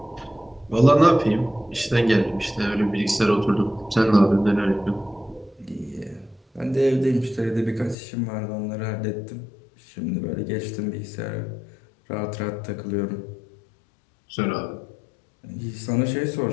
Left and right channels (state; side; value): drops out; right; at 8.0 s